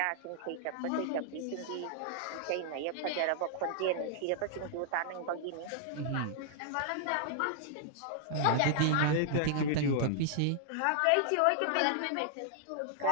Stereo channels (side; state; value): both; different; correlation -0.01